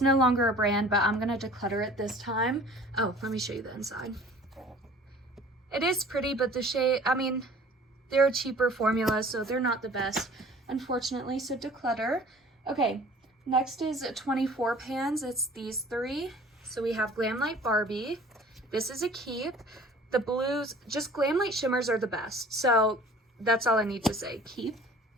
no longer a brand, but I'm gonna declutter it this time. Oh, let me show you the inside. It is pretty, but the shade, I mean, they're a cheaper formula, so they're not the best, unfortunately, so declutter. Okay, next is 24 pans. It's these 3. So we have Glamlight Barbie. This is a keep. The blues, just Glamlight shimmers are the best. So that's all I need to say. Keep.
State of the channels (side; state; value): both; normal; correlation 0.48